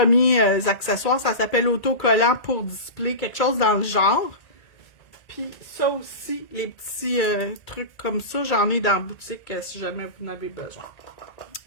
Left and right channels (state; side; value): late; right; 1.8 ms